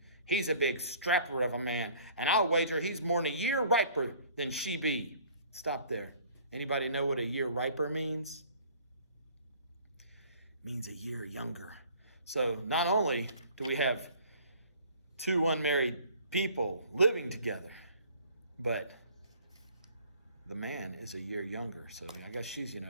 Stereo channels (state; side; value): inverted; both; correlation -0.53